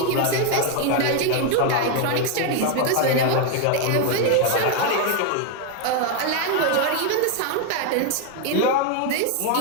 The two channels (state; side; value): different; both; correlation 0.01